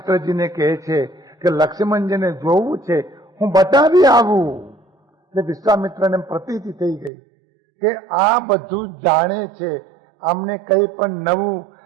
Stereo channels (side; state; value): left; drops out; at 7.1 s